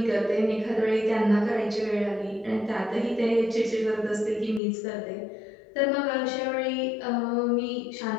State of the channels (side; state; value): right; drops out; at 4.6 s